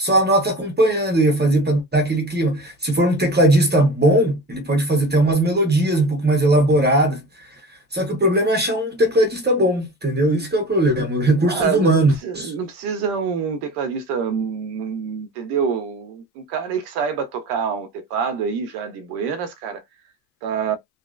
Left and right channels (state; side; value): normal; both; correlation 0.36